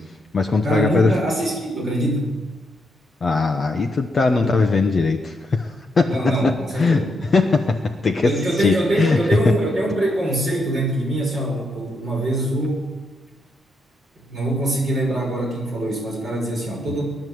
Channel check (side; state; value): both; normal; correlation 0.79